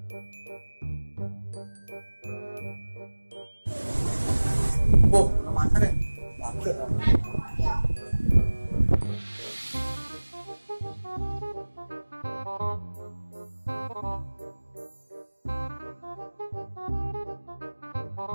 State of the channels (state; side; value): inverted; both; correlation -1.00